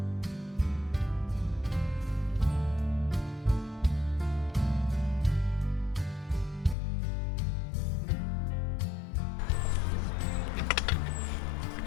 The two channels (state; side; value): drops out; right; at 6.8 s